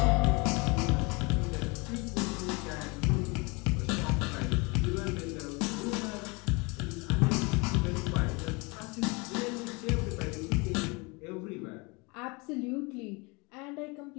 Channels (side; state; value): right; quieter; 28.3 dB